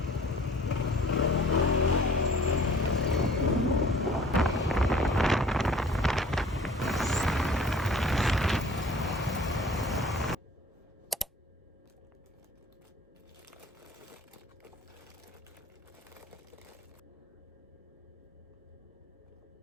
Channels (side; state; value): both; normal; correlation 0.50